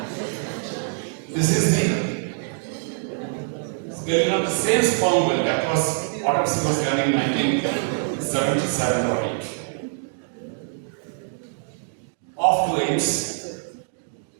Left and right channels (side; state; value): left; silent; digital silence